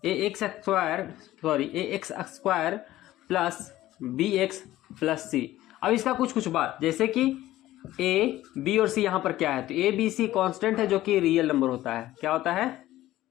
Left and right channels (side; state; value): right; quieter; 15.2 dB